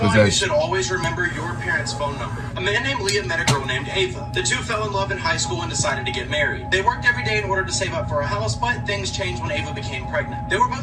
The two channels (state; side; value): identical; both; correlation 1.00